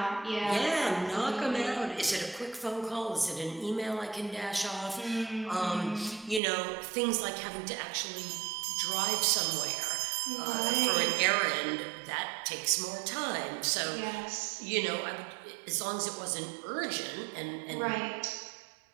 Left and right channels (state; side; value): drops out; left; at 6.4 s